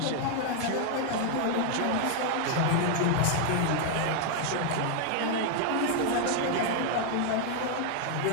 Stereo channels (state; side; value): different; both; correlation 0.00